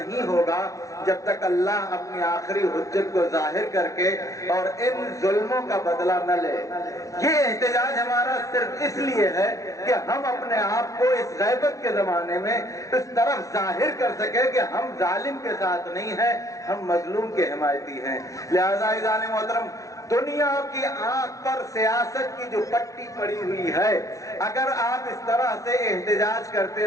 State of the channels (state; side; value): late; right; 0.16 ms